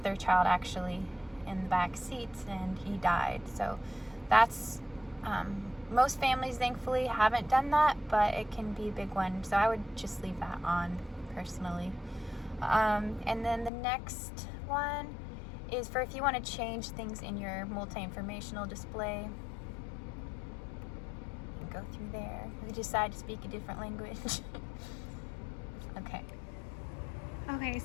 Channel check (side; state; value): right; drops out; at 13.7 s